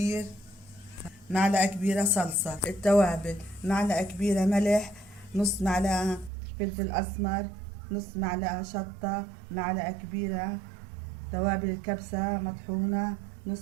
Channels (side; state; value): left; drops out; at 6.3 s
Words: معلقة كبيرة صلصة. التوابل: معلقة كبيرة ملح، نص معلقة فلفل أسمر، نص معلقة شطة، معلقة كبيرة توابل الكبسة مطحونة،